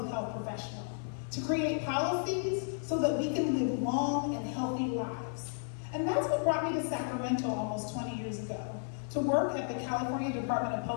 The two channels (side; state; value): right; silent; digital silence